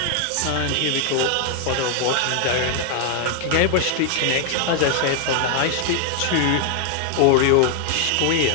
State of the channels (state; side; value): different; both; correlation 0.00